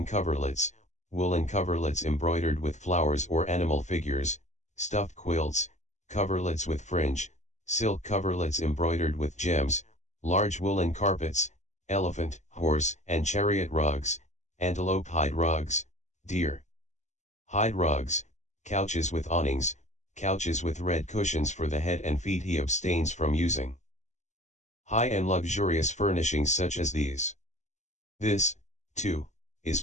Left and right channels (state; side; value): late; right; 0.34 ms